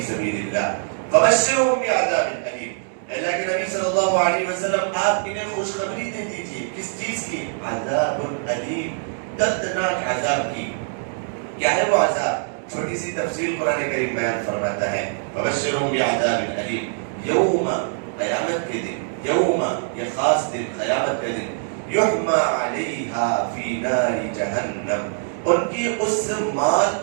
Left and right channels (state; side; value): silent; left; digital silence